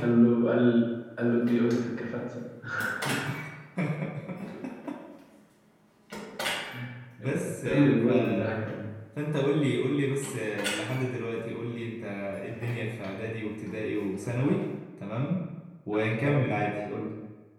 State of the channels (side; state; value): both; identical; correlation 1.00